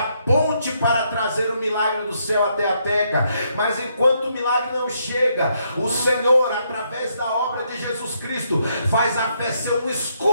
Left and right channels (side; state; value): both; inverted; correlation -0.75